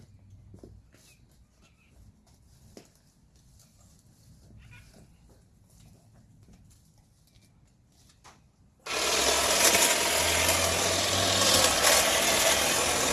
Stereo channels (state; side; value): identical; both; correlation 1.00